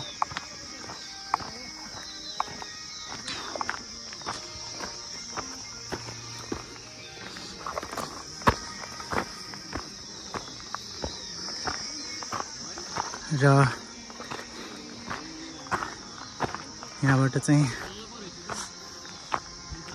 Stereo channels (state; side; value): identical; both; correlation 1.00